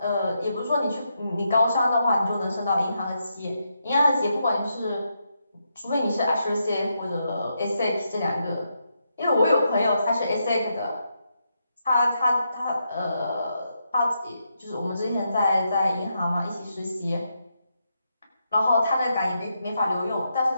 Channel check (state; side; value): inverted; both; correlation -0.82